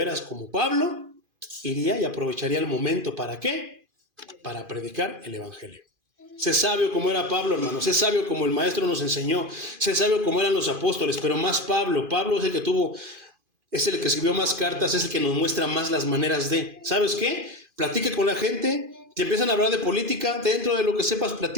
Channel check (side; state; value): left; late; 2.5 ms